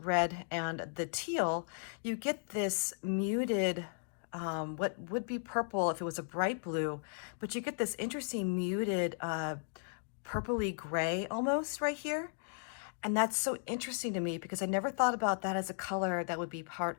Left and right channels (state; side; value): silent; right; digital silence